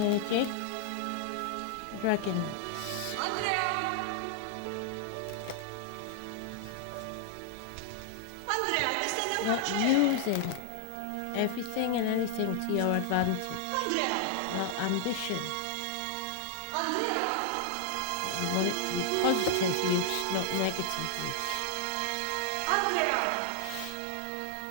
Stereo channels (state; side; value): different; both; correlation 0.00